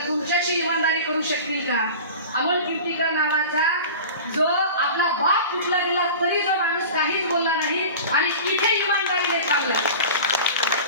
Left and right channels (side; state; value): both; inverted; correlation -0.35